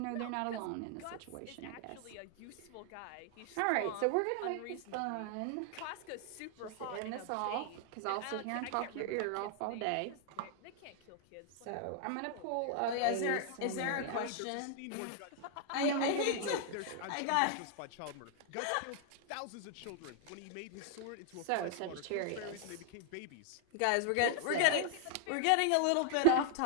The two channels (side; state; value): both; different; correlation 0.00